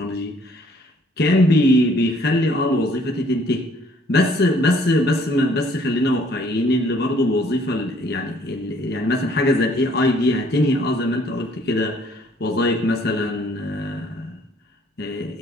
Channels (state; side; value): normal; both; correlation 0.61